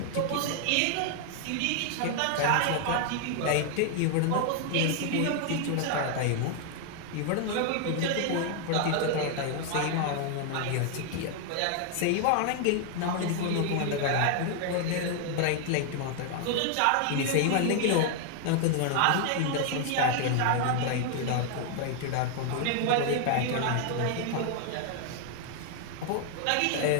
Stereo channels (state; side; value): different; both; correlation 0.00